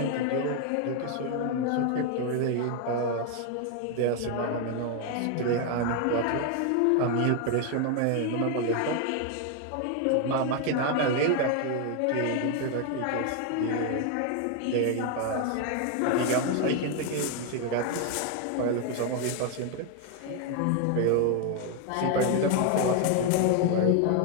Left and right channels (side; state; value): both; different; correlation 0.01